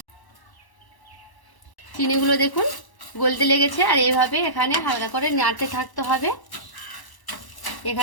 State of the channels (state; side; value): late; right; 1.0 ms